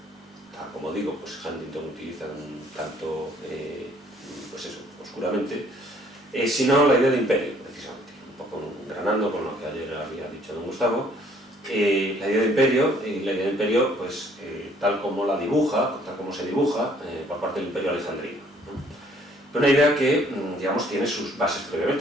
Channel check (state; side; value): normal; both; correlation 0.61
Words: tal como digo, pues Huntington utiliza un tanto, pues eso, oscuramente, sino la idea de imperio, precisamente, un poco granando con lo que ayer había dicho don Gustavo. La idea de imperio, pues, tal como se dibuja por parte del imperio alejandrino, ¿no? Una idea que, digamos, tiene sus bases